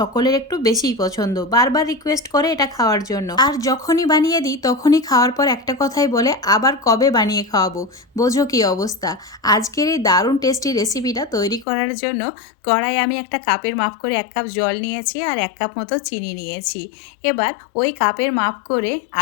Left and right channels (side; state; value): right; drops out; at 11.7 s